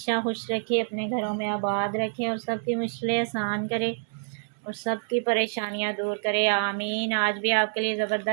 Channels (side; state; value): left; silent; 60 dB below the other